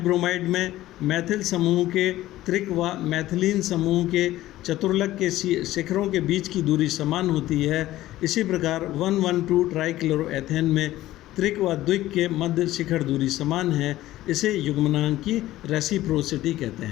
ब्रोमाइड में मैथिल समूह के त्रिक व मैथिलीन समूह के चतुर्लक के शिखरों के बीच की दूरी समान होती है। इसी प्रकार 112 ट्राइक्लोरोएथेन में त्रिक व द्विक के मध्य शिखर दूरी समान है। इसे युग्मनांक की रेसिप्रोसिटी कहते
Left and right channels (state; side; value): quieter; right; 15.4 dB